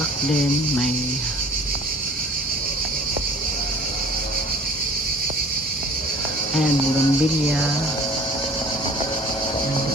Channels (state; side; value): normal; both; correlation 0.48